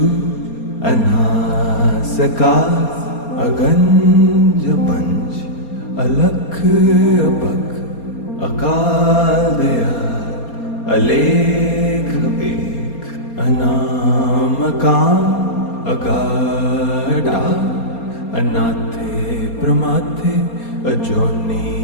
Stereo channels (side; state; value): right; late; 4.3 ms